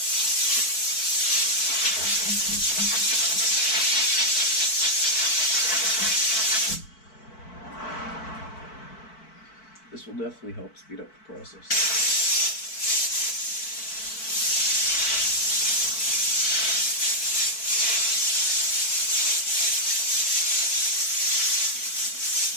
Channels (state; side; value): late; right; 4.5 ms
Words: This will definitely help speed up the process.